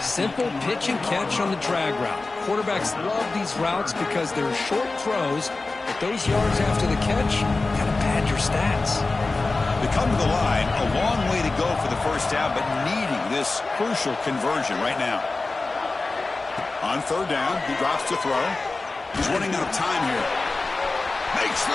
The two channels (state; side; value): quieter; right; 3.5 dB